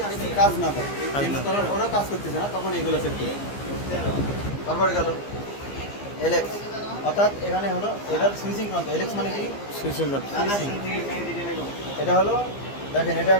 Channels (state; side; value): late; right; 15 ms